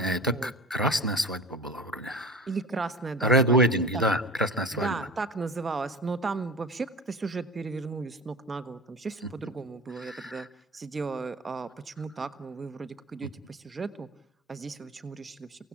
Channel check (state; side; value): normal; both; correlation 0.35